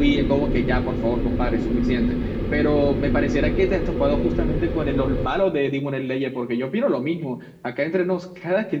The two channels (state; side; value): identical; both; correlation 1.00